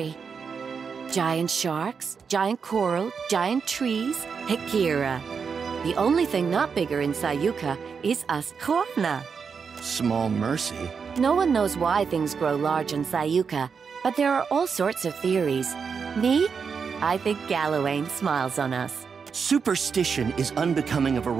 Giant sharks, giant coral, giant trees, Hekira. The only thing not bigger in Sayuka is us Huana. Small mercy. No one knows why things grow large in Sayuka, but there are all sorts of theories. Me? I think Gallowayne smiles on us. Superstition is unbecoming of a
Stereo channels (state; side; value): quieter; left; 5.9 dB